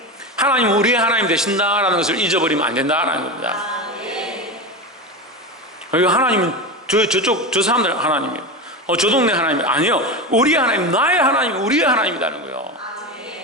하나님 우리의 하나님 되신다라는 것을 잊어버리면 안 된다라는 겁니다. 하나님은 저 사람들 하나님이에요. 저 동네 하나님 아니요. 우리의 하나님, 나의 하나님, 우리의 하나님이라는 거예요.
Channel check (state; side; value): normal; both; correlation 0.21